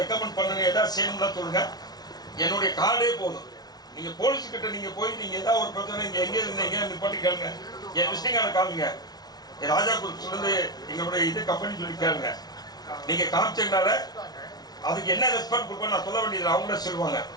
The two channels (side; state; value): right; late; 0.19 ms